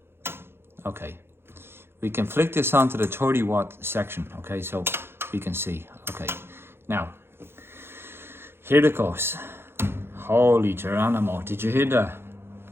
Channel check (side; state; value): left; late; 0.11 ms